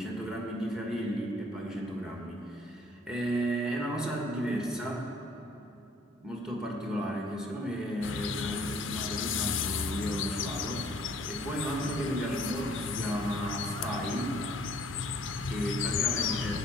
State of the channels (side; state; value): both; normal; correlation 0.59